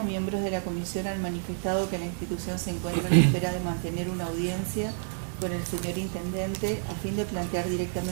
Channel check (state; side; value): silent; left; digital silence